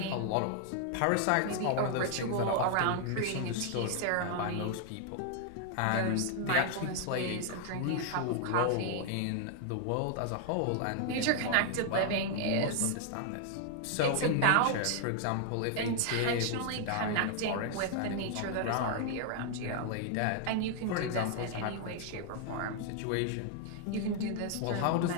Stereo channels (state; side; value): different; both; correlation 0.00